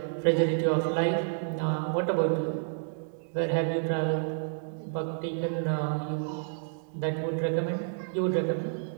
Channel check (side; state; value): left; silent; digital silence